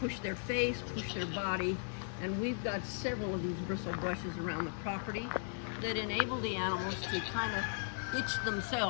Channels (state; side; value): silent; right; 53 dB below the other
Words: push their face, push their body, and we've got several of these bristle brushes around the property that enable the animals to kind of itch